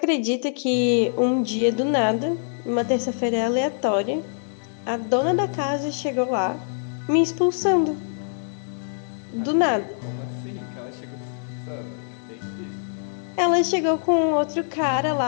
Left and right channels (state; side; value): silent; right; digital silence